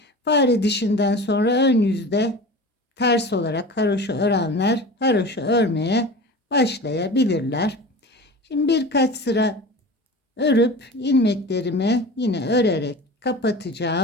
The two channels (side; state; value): both; normal; correlation 0.35